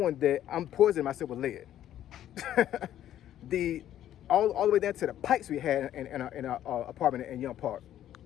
that I'm poisoning myself with lead. All the way down to the pipes we had in our apartment in Young Park.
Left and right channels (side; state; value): right; quieter; 11.7 dB